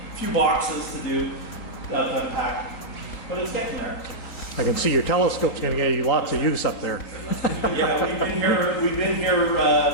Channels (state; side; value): late; right; 3.8 ms